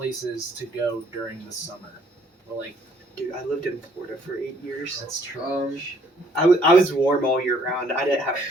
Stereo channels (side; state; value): both; normal; correlation 0.63